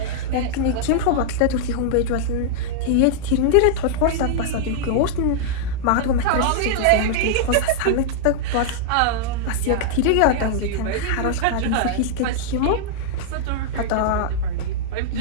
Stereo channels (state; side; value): different; both; correlation -0.01